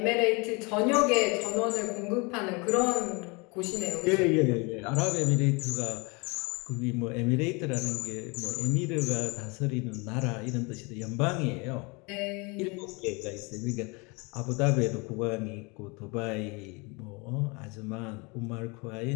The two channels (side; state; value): right; quieter; 28.8 dB